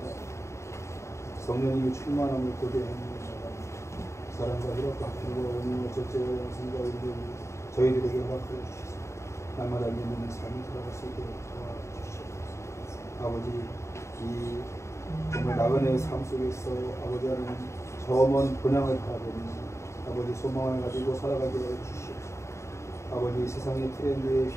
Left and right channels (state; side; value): late; right; 0.14 ms